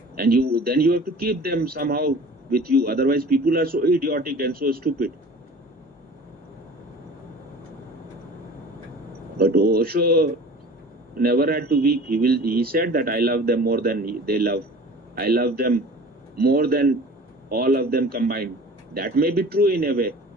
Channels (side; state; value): both; normal; correlation 0.43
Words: and then you have to keep them somehow with you. Otherwise, people are so idiotic and so stupid. But Osho never had to weep. He said that I love them more than they love. I love them more than all of them combined. That may be true in a way,